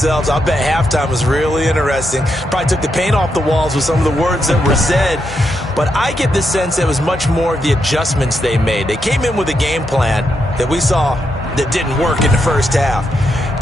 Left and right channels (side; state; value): both; normal; correlation 0.82